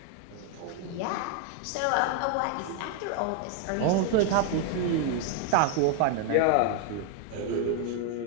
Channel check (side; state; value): both; different; correlation 0.00